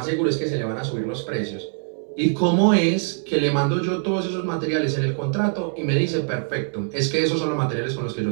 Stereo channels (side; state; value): left; silent; 56 dB below the other